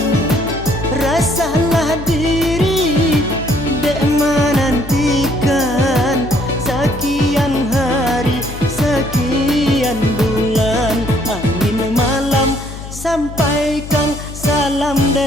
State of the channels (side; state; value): left; noise; hum, 11 dB below the sound